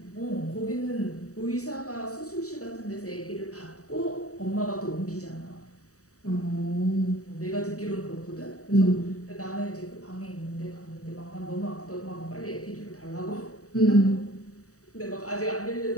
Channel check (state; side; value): late; right; 0.66 ms